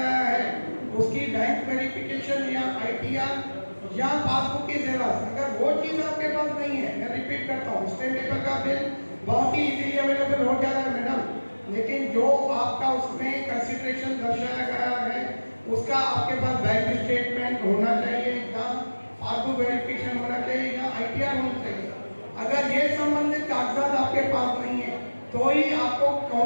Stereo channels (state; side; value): inverted; both; correlation -1.00